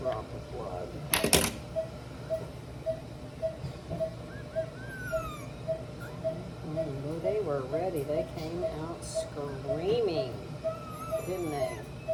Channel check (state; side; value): identical; both; correlation 1.00